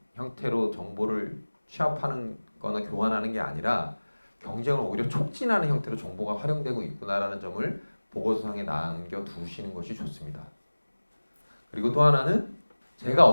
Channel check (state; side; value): inverted; both; correlation -1.00